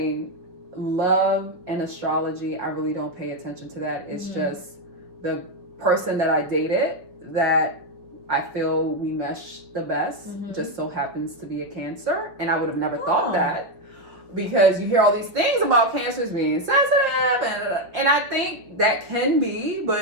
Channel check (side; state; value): left; late; 5.2 ms